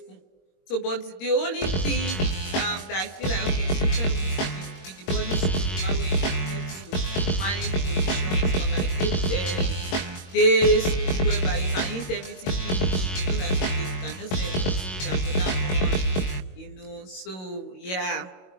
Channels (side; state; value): right; late; 22 ms